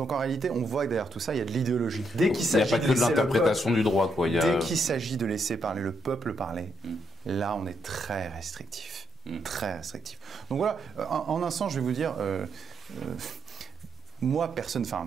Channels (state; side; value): normal; both; correlation 0.78